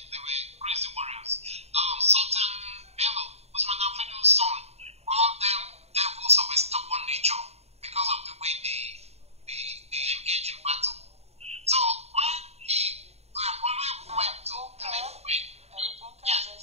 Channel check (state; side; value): late; left; 0.31 ms